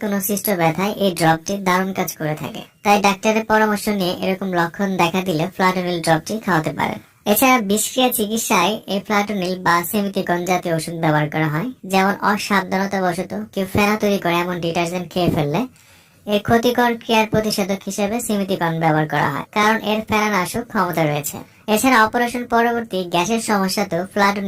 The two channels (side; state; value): both; identical; correlation 1.00